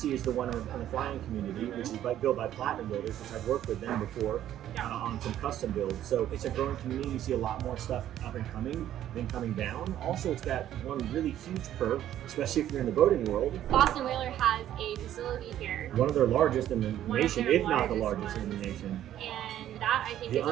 is the one in the flying community, which is built by Platinum Builders, which I've worked with them before on some custom builds. So it's a growing community. You see a lot more stuff up and coming than coming down. Also, it's got one really huge pro, especially if you're in the boating world. Boston Whaler has a facility here. One of their largest in the nation, if not the largest in the nation. And that, I think, the is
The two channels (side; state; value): left; quieter; 11.8 dB